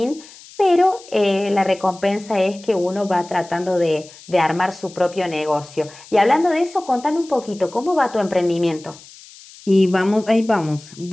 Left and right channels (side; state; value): left; noise; hiss, 21 dB below the sound